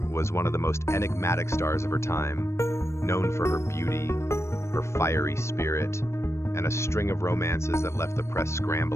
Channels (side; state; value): right; late; 0.13 ms